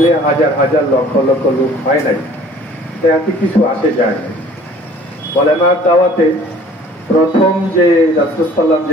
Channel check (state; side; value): normal; both; correlation 0.52